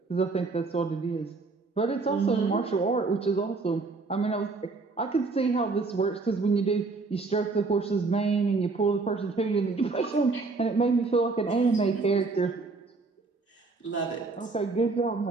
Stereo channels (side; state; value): left; quieter; 3.9 dB